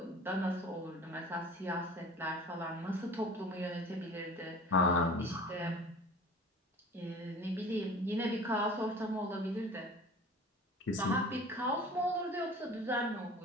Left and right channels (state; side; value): normal; both; correlation 0.43